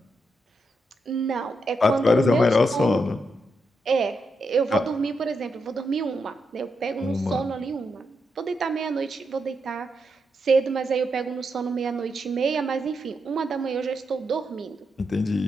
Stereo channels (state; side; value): normal; both; correlation 0.83